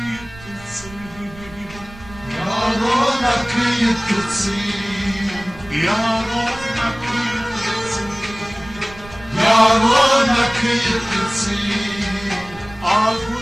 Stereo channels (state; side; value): noise; right; rumble, 18 dB below the sound